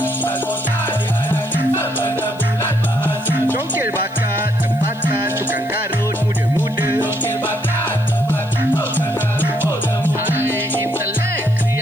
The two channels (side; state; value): left; noise; hiss, 27 dB below the sound